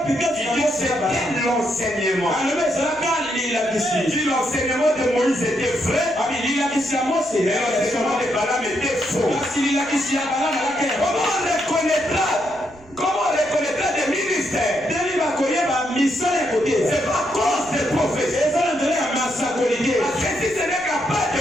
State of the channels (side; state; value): right; noise; rumble, 26 dB below the sound